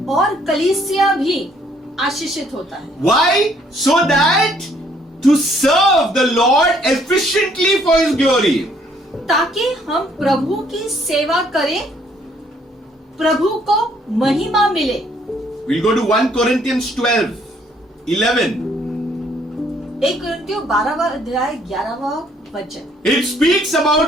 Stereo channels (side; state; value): both; normal; correlation 0.65